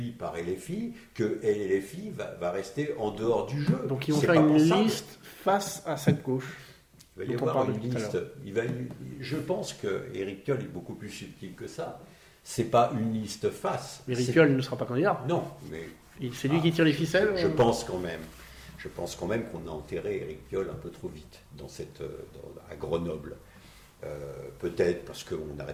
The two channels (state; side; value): identical; both; correlation 1.00